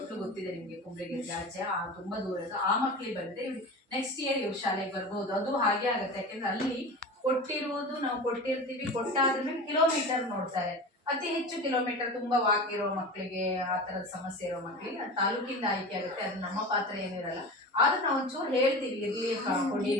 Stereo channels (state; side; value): normal; both; correlation 0.31